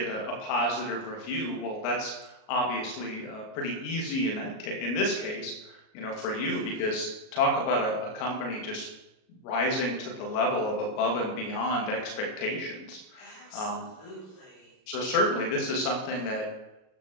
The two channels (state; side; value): late; right; 37 ms